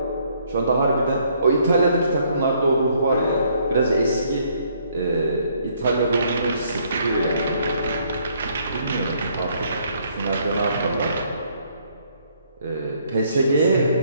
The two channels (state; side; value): inverted; both; correlation -0.67